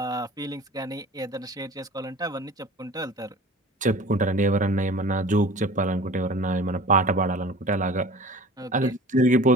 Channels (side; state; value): both; normal; correlation 0.42